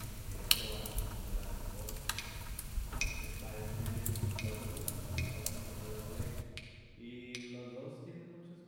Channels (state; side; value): identical; both; correlation 1.00